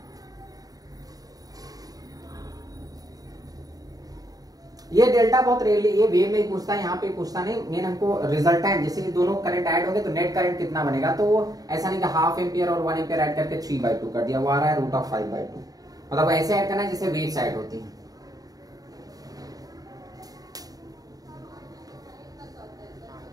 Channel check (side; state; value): left; late; 0.18 ms